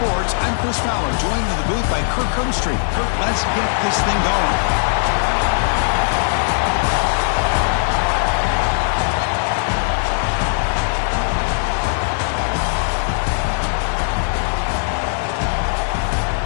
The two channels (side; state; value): right; silent; digital silence